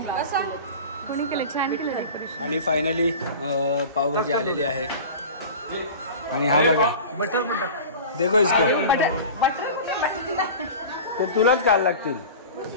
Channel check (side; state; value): both; inverted; correlation -0.36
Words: केले? छान केले डेकोरेशन. आणि फायनली पावभाजी आलेली आहे. आणि हा बघा, बटर देखो इसको, ते तुलाच घाल लागतील.